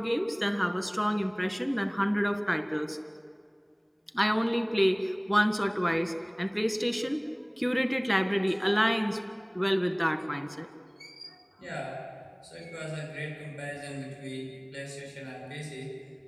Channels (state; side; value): identical; both; correlation 1.00